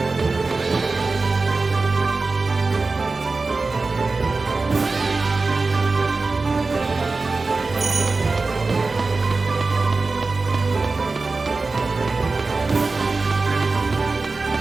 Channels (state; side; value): quieter; left; 3.8 dB